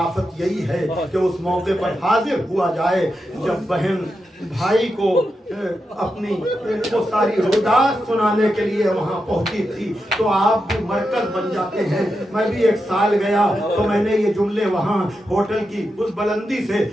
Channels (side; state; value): both; normal; correlation 0.87